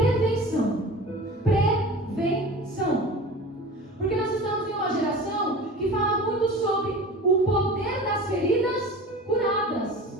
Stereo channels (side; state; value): both; normal; correlation 0.37